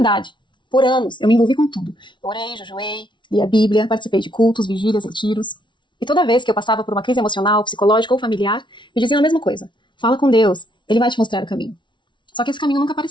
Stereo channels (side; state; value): right; late; 0.23 ms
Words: Por anos, eu me envolvi com tudo. Eu orei, jejuei, li a Bíblia, participei de cultos, vigílias, retiros. E toda vez que eu passava por uma crise emocional, psicológica ou familiar, me diziam a mesma coisa. Fala com Deus, ele vai te mostrar o caminho. Só que esse caminho nunca